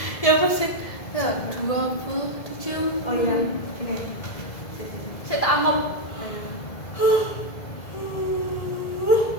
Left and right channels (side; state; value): right; late; 2.0 ms